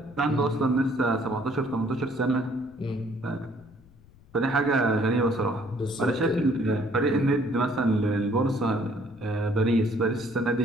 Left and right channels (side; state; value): left; noise; rumble, 26 dB below the sound